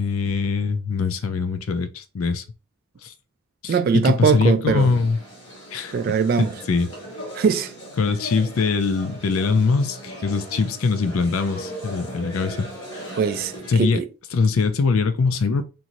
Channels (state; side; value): normal; both; correlation 0.56